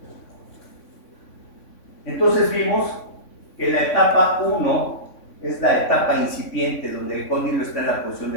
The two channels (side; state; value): right; late; 3.5 ms